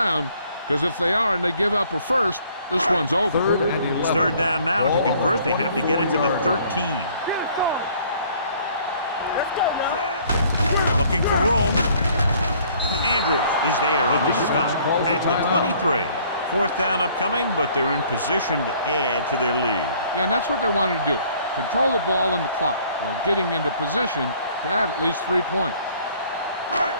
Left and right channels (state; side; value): inverted; both; correlation -0.58